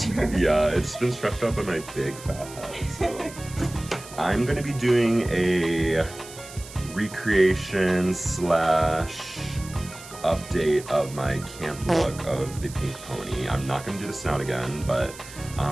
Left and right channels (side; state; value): right; noise; hiss, 16 dB below the sound